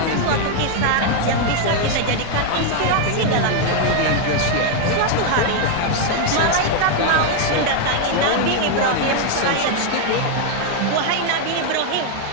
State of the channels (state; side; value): different; both; correlation 0.01